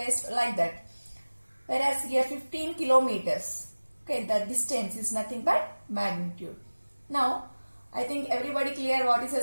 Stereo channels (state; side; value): inverted; both; correlation -1.00